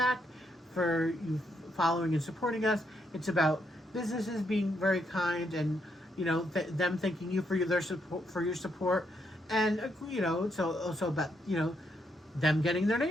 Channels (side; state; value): both; normal; correlation 0.77